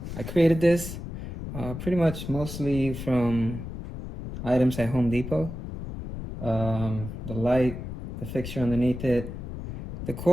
I created this pretty much mostly from items at Home Depot. The light, the fixture underneath it. The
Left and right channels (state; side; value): noise; left; rumble, 8 dB below the sound